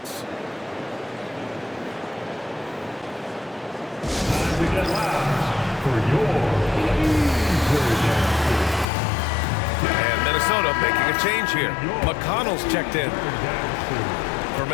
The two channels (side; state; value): right; drops out; at 8.8 s